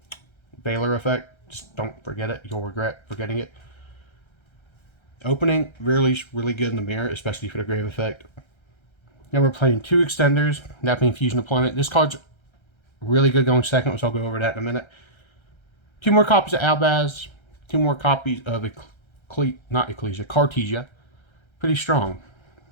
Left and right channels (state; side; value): late; right; 1.3 ms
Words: Valor Effect. Just don't forget it. You'll regret forgetting it. Opening, really good in the mirror, especially for the Grave Effect. Now we're playing 2 extenders, that being Fusion Deployment. This card's really good going second, which I'll go over that in a minute. 2 more copies of Albaz. 2 more copies of Cartesia. Pretty strong.